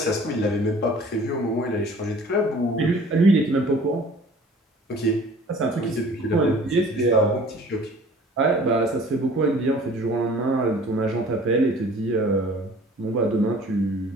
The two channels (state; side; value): normal; both; correlation 0.49